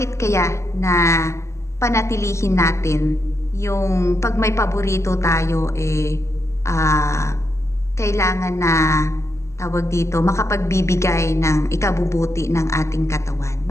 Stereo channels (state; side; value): late; right; 0.14 ms